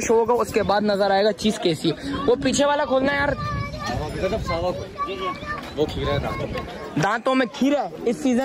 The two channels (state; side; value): identical; both; correlation 1.00